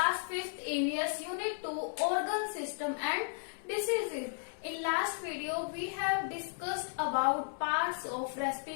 5th AVS Unit 2 Organ System and Diseases. In last video we have discussed about parts of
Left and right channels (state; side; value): silent; right; digital silence